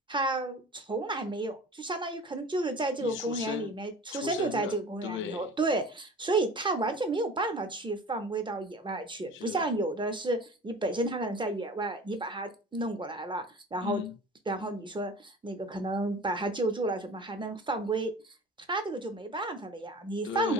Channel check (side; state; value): both; normal; correlation 0.40